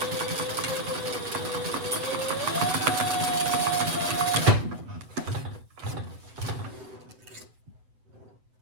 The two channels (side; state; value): left; late; 7.9 ms